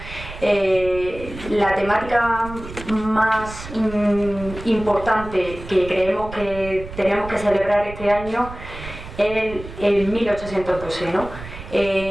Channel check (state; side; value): noise; right; rumble, 13 dB below the sound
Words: la temática más importante que creemos que tenemos que celebrar este año es el 1812, ¿no?